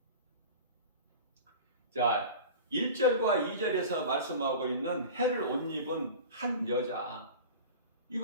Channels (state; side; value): inverted; both; correlation -0.35